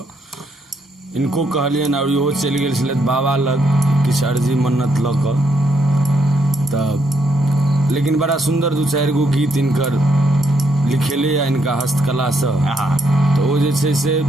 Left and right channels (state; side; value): normal; both; correlation 0.76